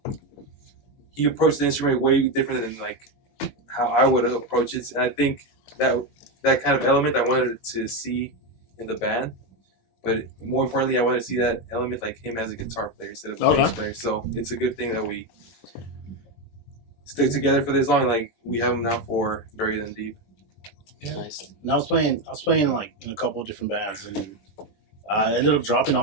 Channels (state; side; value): late; right; 21 ms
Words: He approached the instrument way different than like how I would approach it, and I think that kind of element I wanted to see in the band. But more importantly, I wanted to see that element like him as a guitar player instead of a bass player. So it's a good thing that we stick together for this long. Like we have him now for Buried in the Deep. Yeah. Nice. And I was playing like in a couple of different bands, and I ended up dropping